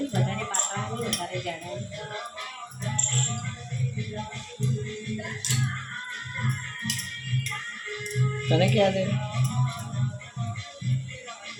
વધારે પાતળા નહીં, વધારે જાડા નહીં. તને ક્યાં દે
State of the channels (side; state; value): both; identical; correlation 1.00